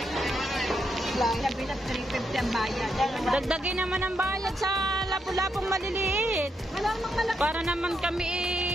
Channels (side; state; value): both; normal; correlation 0.81